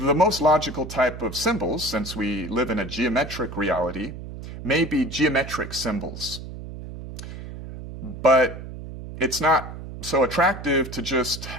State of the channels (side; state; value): right; noise; hum, 11 dB below the sound